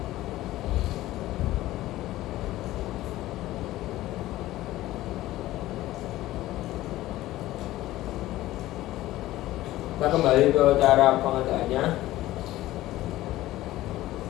Kita kembali ke cara pengerjaannya.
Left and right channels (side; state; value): right; quieter; 16.0 dB